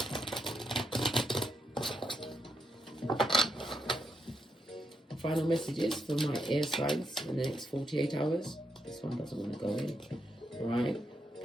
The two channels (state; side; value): normal; both; correlation 0.82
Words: Final messages for my air signs in the next 48 hours. This one doesn't want to go in. Right?